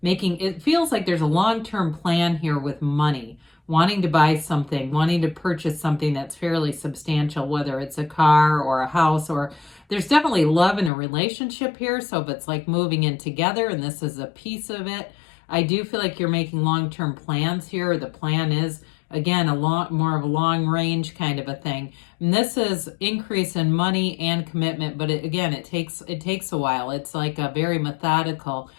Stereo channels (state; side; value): drops out; right; at 10.9 s